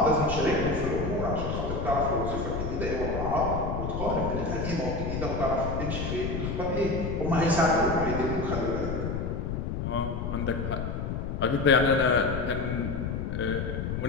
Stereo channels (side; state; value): left; noise; rumble, 3 dB below the sound